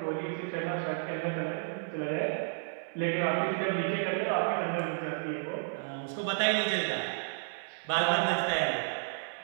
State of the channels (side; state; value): left; silent; digital silence